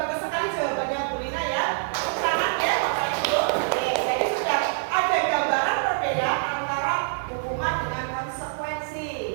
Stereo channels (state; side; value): silent; left; digital silence